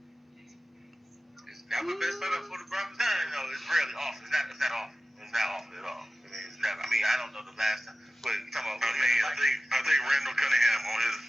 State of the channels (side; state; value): both; normal; correlation 0.95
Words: It's never been set up for the brothers. No, it's rarely off. It's not off. It's not off at all. I mean, it's never. I mean, I don't know the last time, but you talking about. I think Randall Cunningham on